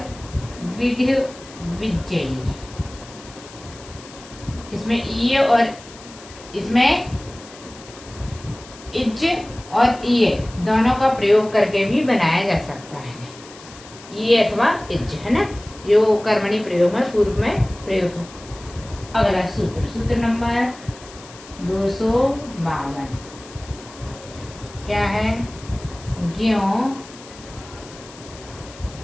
विड्य विजयी। इसमें ये और इसमें इज्ज और ये दोनों का प्रयोग करके भी बनाया जा सकता है, ये अथवा इज्ज, है ना, जो कर्मणी प्रयोग में पूर्व में प्रयोग हो। अगला सूत्र, सूत्र नंबर 252 क्या है? ज्यों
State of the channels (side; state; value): left; noise; hiss, 19 dB below the sound